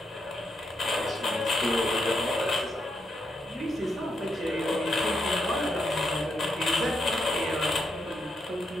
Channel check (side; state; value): both; normal; correlation 0.81